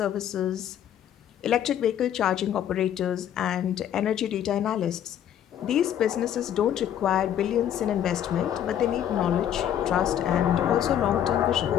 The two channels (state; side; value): quieter; right; 10.3 dB